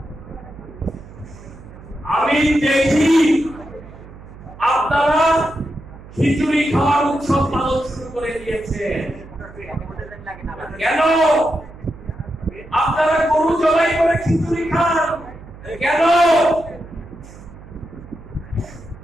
আমি দেখি আপনারা খিচুড়ি খাওয়ার উৎসব পালন শুরু করে দিয়েছেন। কেন আপনারা গরু জবাই করে খিচুড়ি খান? কেন?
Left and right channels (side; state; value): right; noise; hum, 18 dB below the sound